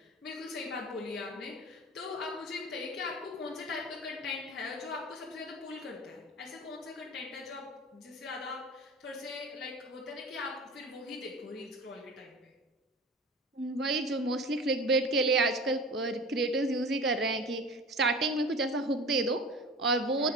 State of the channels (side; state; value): both; normal; correlation 0.37